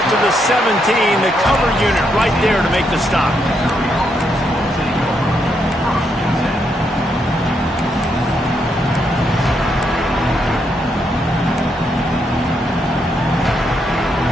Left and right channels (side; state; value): both; normal; correlation 0.78